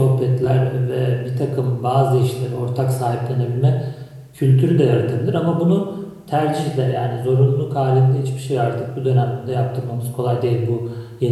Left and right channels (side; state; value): both; identical; correlation 1.00